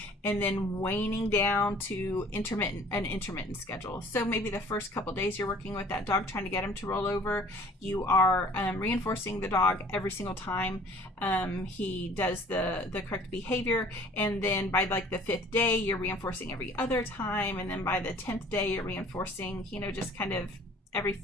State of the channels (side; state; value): both; normal; correlation 0.51